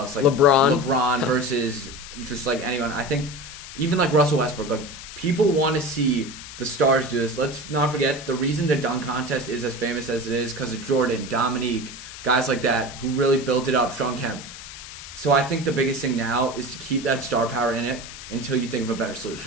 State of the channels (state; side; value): noise; left; hiss, 13 dB below the sound